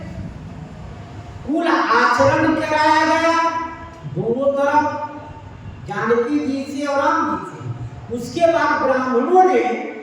कुल आचरण कराया गया दोनों तरफ, जानकी जी से और राम जी से। उसके बाद ब्राह्मणों ने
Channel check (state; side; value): identical; both; correlation 1.00